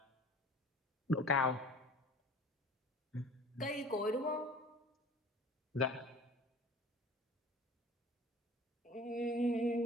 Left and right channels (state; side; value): normal; both; correlation 0.44